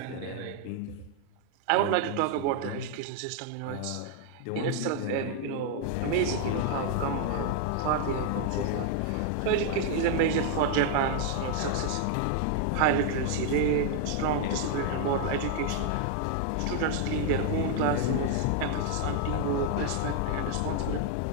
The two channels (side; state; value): both; different; correlation 0.00